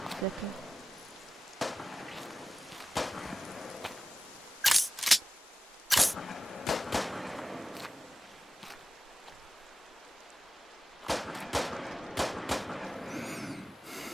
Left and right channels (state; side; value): normal; both; correlation 0.95